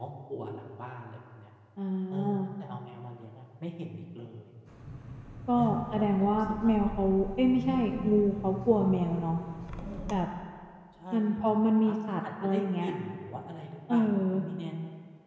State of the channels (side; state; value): both; identical; correlation 1.00